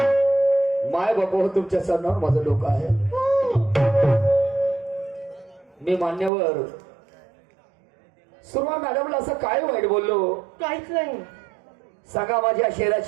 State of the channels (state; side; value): drops out; left; at 6.3 s